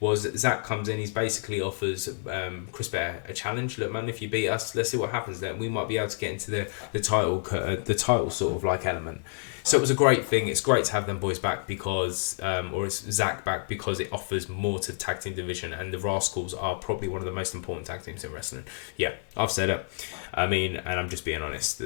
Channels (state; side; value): silent; right; 59 dB below the other